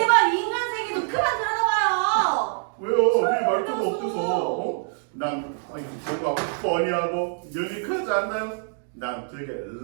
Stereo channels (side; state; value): left; silent; 62 dB below the other